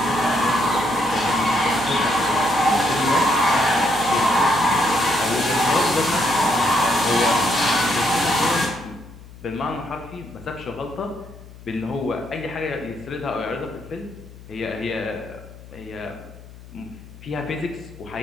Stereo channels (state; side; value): noise; left; hum, 18 dB below the sound